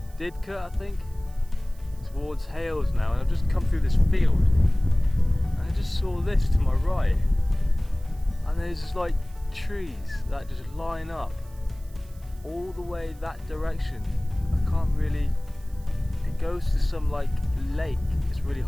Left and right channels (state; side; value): noise; right; hiss, 27 dB below the sound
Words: Didcot, I think, towards Hales now, and I've just come through this field and I just saw this to my right, and there's just like trees that just line up all the way that direction. I can't really, it goes to some like lake. It's really